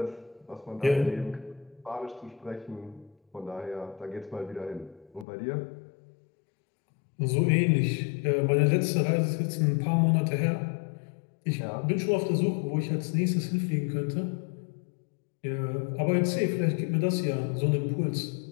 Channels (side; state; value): right; drops out; at 5.2 s